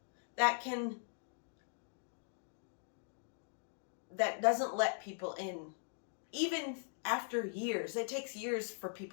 that doesn't let people in. Even after years, it takes years for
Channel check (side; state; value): right; silent; digital silence